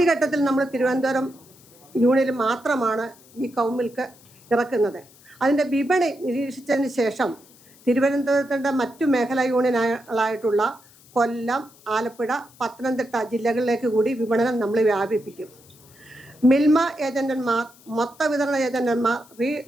നമ്മൾ തിരുവനന്തപുരം യൂണിയനിൽ മാത്രമാണ് ഈ കൗമിൽക്ക് ഇറക്കുന്നത്. അതിൻ്റെ വിപണി നിരീക്ഷിച്ചതിന് ശേഷം തിരുവനന്തപുരത്തിൻ്റെ മറ്റു മേഖലാ യൂണിയനുകളായിട്ടുള്ള കൊല്ലം, ആലപ്പുഴ, പത്തനംതിട്ട ജില്ലകളിലേക്ക് കൂടി വിപണനം നമ്മൾ വ്യാപിപ്പിക്കും. മിൽമ ഏജന്റന്മാർ, മൊത്ത വിതരണ ഏജന്റന്മാർ,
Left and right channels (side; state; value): left; noise; hiss, 26 dB below the sound